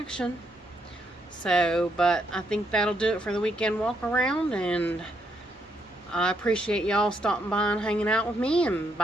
So, but I think that'll do it for the weekend walk around, and I appreciate y'all stopping by and hanging out with me, and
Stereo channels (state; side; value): normal; both; correlation 0.76